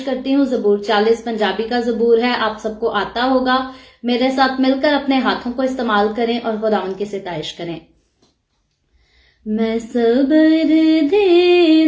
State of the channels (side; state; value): both; identical; correlation 1.00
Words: करती हूँ, ज़बूर 40 पंजाबी का ज़बूर है, आप सबको आता होगा। मेरे साथ मिलकर अपने हाथों को इस्तेमाल करें और खुदावंद की सिताइश करें। मैं सबर दे